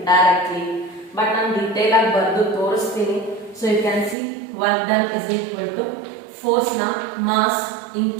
directly. But ನಾನು detail ಆಗಿ ಬರೆದು ತೋರಿಸ್ತೀನಿ. So you can see work done is equal to force na mass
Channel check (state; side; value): drops out; left; at 4.2 s